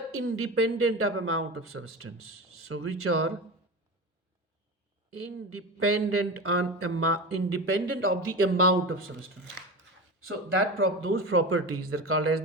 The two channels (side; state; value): both; normal; correlation 0.27